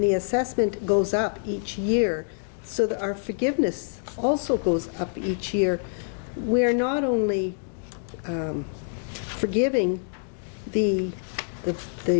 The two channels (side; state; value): right; silent; digital silence